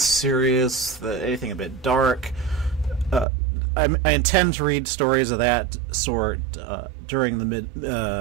anything a bit dark. I intend to read stories of that sort during the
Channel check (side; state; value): left; drops out; at 3.2 s